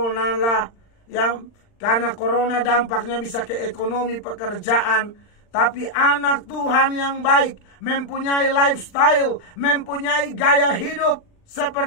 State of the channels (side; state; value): right; late; 39 ms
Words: lah, yang karena corona dampaknya bisa ke ekonomi, pekerjaan. Tapi anak Tuhan yang baik mempunyai lifestyle, mempunyai gaya hidup